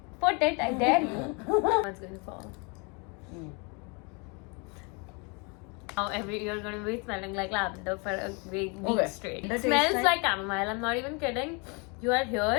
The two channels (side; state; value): right; quieter; 32.1 dB